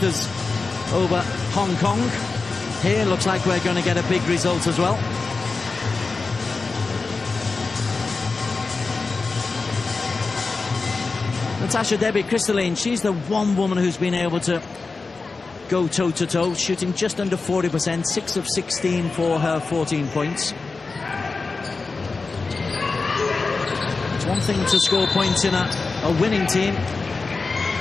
over Hong Kong. Here looks like we're going to get a big result as well. Natasha Debbie Crystalline, she's the one woman who's been able to go toe-to-toe, shooting just under 40%, 6 of 16 for her 14 points. It's one thing to score points in a winning team,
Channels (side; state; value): right; quieter; 4.1 dB